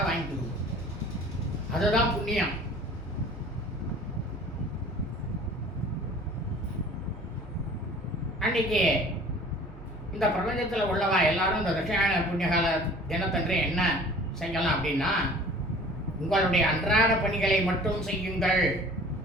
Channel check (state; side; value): noise; right; hum, 17 dB below the sound